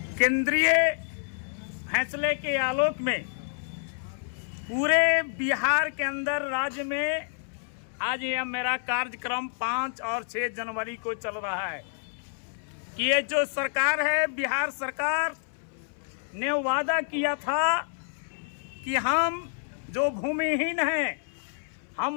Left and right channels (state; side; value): silent; right; 59 dB below the other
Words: केंद्रीय फैसले के आलोक में पूरे बिहार के अंदर राज्य में आज यह मेरा कार्यक्रम 5 और 6 जनवरी को चल रहा है कि ये जो सरकार है, बिहार सरकार ने वादा किया था कि हम जो भूमिहीन हैं